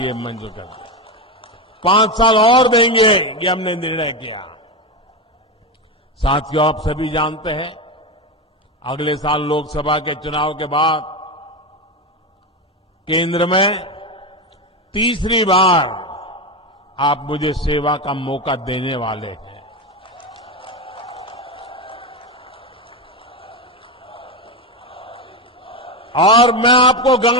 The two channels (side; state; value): both; normal; correlation 0.15